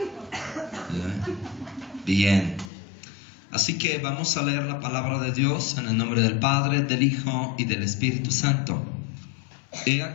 Bien, así que vamos a leer la palabra de Dios en el nombre del Padre, del Hijo y del Espíritu Santo. He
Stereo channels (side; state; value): right; drops out; at 2.7 s